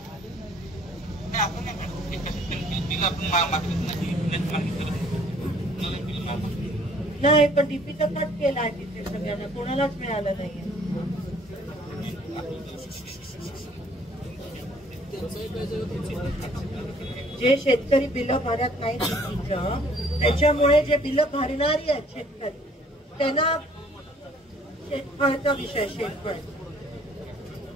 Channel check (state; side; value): normal; both; correlation 0.59